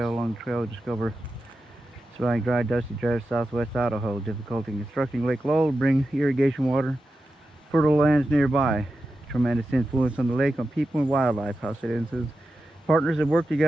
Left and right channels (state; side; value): normal; both; correlation 0.91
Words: Along the trail, discover surviving dry, dusty drive southwest Idaho. Difficulty in constructing Lake Lowell, bring irrigation water, fertile lands nearby. Tremendous influence on the lake, on people and wildlife. House citizens, partners have worked